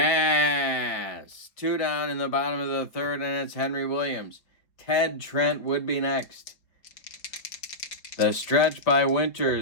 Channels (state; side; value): late; right; 4.2 ms